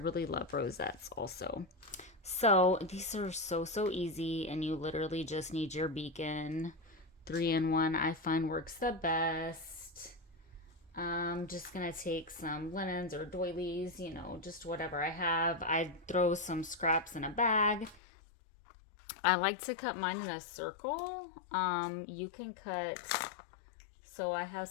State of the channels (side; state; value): right; drops out; at 18.0 s